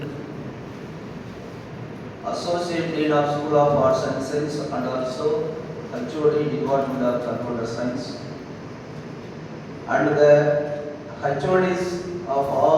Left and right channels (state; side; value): identical; both; correlation 1.00